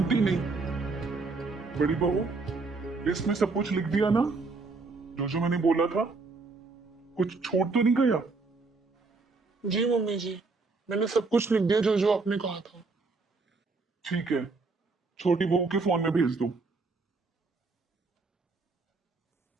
नहीं। बड़ी बहू, लिस्ट में सब कुछ लिख दिया ना, जो मैंने बोला था? कुछ छोड़ तो नहीं गया? जी मम्मी जी, मैंने सब कुछ लिख दिया जो आपने कहा था। ठीक है, छोटी बहू के फोन में भेज दो।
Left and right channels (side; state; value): left; quieter; 4.0 dB